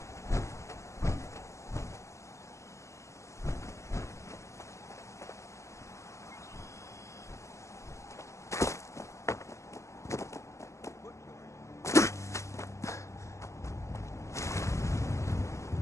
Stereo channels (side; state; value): right; late; 0.14 ms